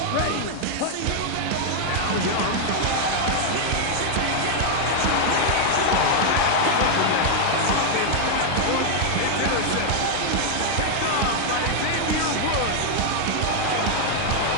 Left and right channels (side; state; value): both; different; correlation 0.00